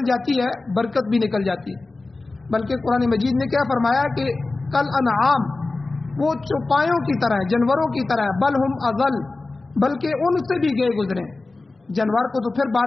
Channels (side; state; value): right; quieter; 3.4 dB